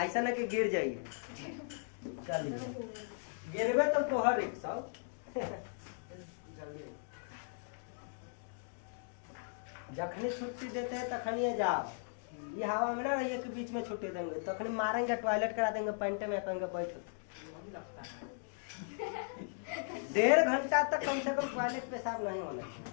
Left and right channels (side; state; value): right; silent; digital silence